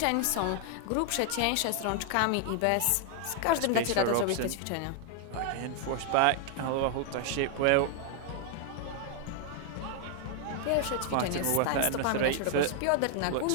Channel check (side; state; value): both; different; correlation 0.00